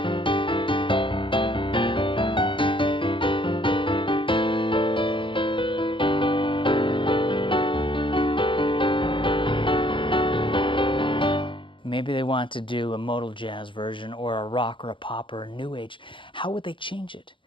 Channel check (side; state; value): right; late; 0.24 ms